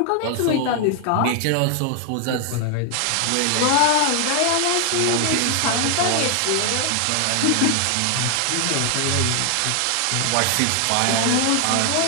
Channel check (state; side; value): different; both; correlation 0.00